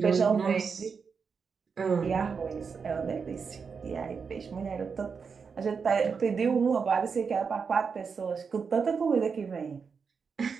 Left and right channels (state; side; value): quieter; left; 5.7 dB